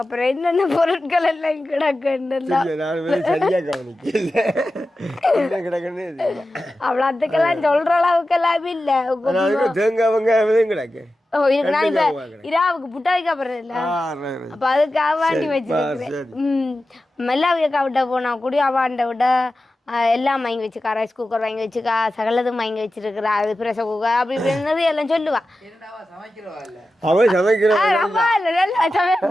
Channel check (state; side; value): normal; both; correlation 0.93